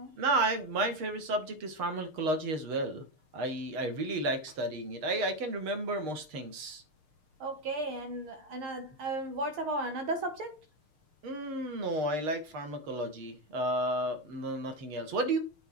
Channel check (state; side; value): late; left; 6.5 ms